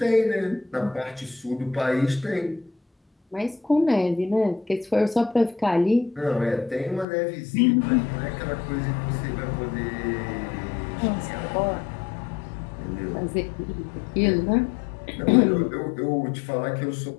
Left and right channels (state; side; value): drops out; right; at 7.1 s